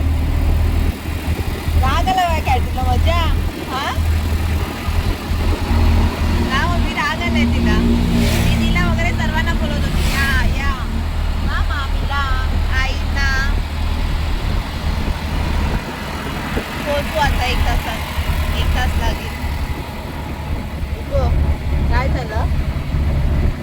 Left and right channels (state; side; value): identical; both; correlation 1.00